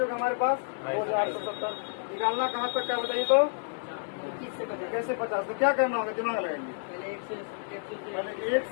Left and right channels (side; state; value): right; silent; 58 dB below the other